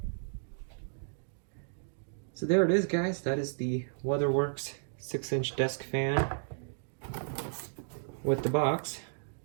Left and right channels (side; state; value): left; silent; digital silence